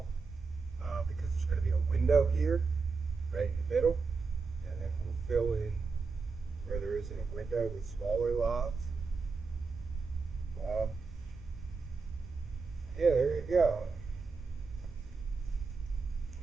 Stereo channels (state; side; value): quieter; left; 4.6 dB